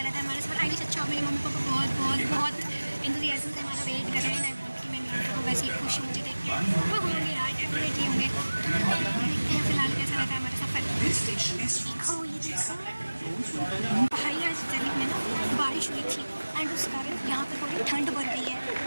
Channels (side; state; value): both; inverted; correlation -1.00